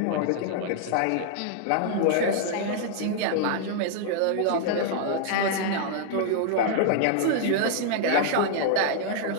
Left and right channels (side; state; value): both; different; correlation -0.01